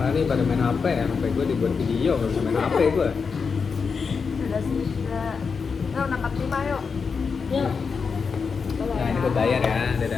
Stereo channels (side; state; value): right; quieter; 5.4 dB